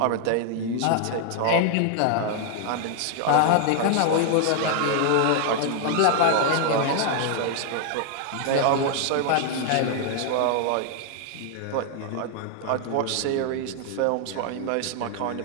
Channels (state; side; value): different; both; correlation 0.00